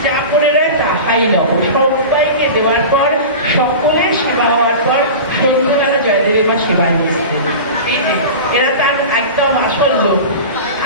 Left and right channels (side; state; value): both; inverted; correlation -0.31